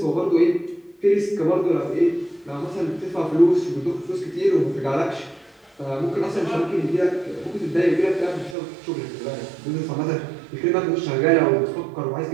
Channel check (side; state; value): left; drops out; at 8.6 s